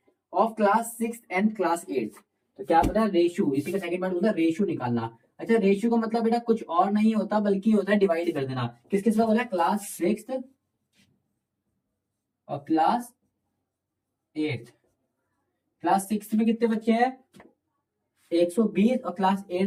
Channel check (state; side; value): identical; both; correlation 1.00